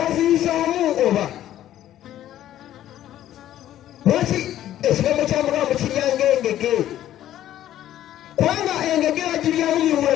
oba lwaki ekigambo kya Mukama mukiryanga engege kubanga engege bagiryamu miwula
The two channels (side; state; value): right; quieter; 12.4 dB